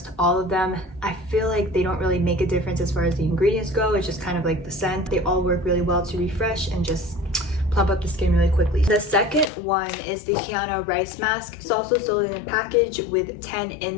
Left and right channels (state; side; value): drops out; right; at 9.5 s